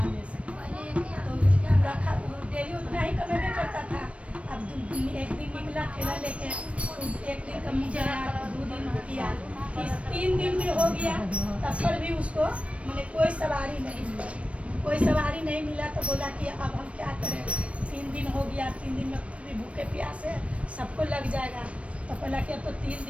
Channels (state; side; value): late; left; 0.062 ms